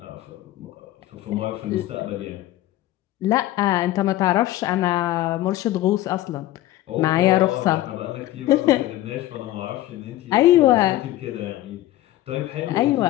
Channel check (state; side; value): quieter; right; 15.1 dB